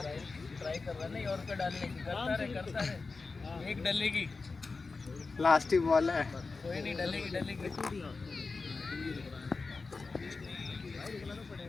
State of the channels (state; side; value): quieter; right; 4.1 dB